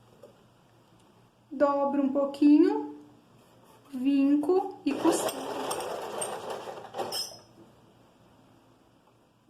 Dobro um pouquinho, vinco e costuro.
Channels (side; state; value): both; identical; correlation 1.00